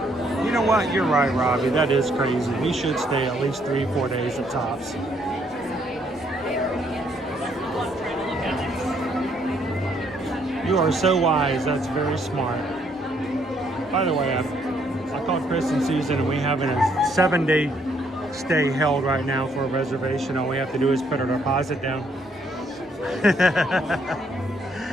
You know what? You're right, Robbie. That is crazy. We should stay at least 3-4 days at tops. You are so wise. That's very smart. By the way, I called Chris and Susan, and we have a 7-day stay held right now for a reservation. All we have to do is put our deposit down.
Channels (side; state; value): both; normal; correlation 0.69